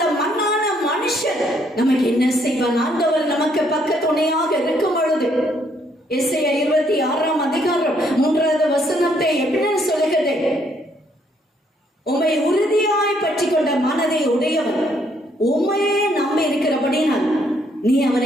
மண்ணான மனுஷன் நமக்கு என்ன செய்வான்? ஆண்டவர் நமக்கு பக்க துணையாக இருக்கும் பொழுது எசேயா 26ஆம் அதிகாரம் 3வது வசனத்தை எப்படி சொல்லுகிறது? உம்மை உறுதியாய் பற்றி கொண்ட மனதை உடையவன், உம்மையே நம்பி இருக்கிறபடினால் நீ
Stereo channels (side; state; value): both; normal; correlation 0.69